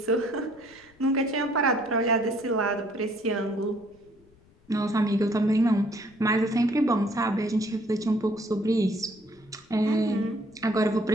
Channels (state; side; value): noise; left; rumble, 29 dB below the sound